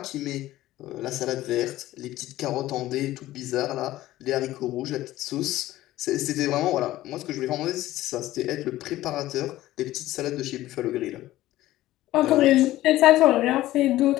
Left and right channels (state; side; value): quieter; right; 15.5 dB